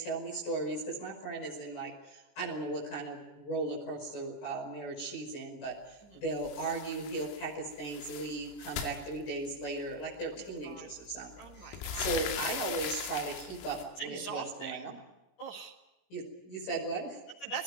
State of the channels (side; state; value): right; late; 21 ms